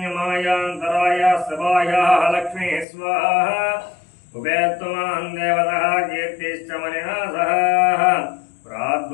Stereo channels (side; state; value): right; drops out; at 2.9 s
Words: सभायाः लक्ष्मी स्वाहा उपेत्तमान् देवतः कीर्तिश्च मणिना सह